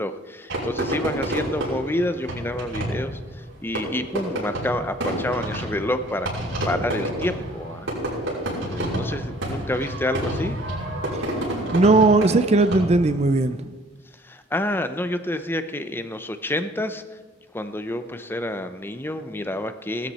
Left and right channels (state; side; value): normal; both; correlation 0.54